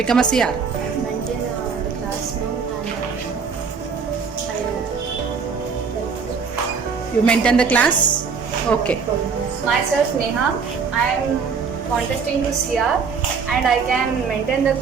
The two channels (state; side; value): quieter; left; 5.7 dB